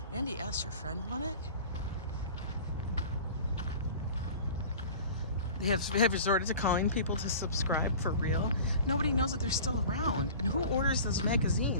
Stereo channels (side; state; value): both; inverted; correlation -0.40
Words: Andy S., your friend won it? They have resorted to calling people to subscribe for real. Nobody knows that they're still around. And who orders those